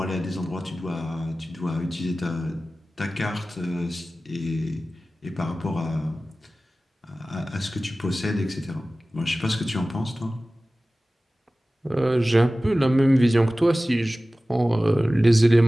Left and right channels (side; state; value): both; normal; correlation 0.96